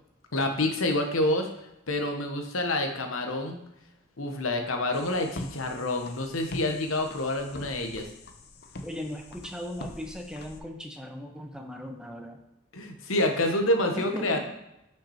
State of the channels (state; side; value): normal; both; correlation 0.05